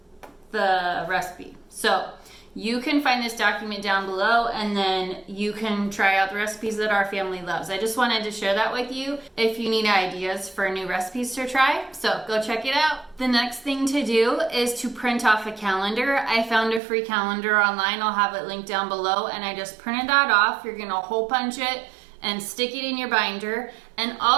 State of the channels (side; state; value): left; drops out; at 16.8 s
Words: the recipe. So you can find this document down below, and then you can try out the recipes that our family loves. I just wanted to share that with you if you need ideas for new recipes to try. So go check it out. The next thing to do is to print off a calendar. I found a free calendar online. I'll have it linked down below, and I just printed that off. You're gonna hole punch it and stick it in your binder, and